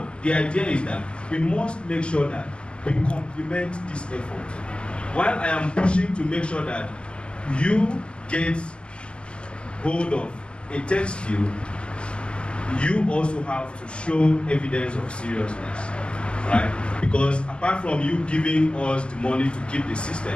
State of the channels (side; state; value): right; late; 0.056 ms